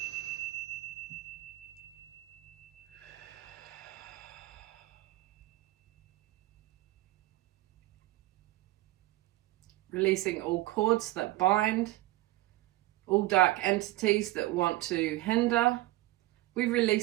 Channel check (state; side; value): quieter; left; 17.8 dB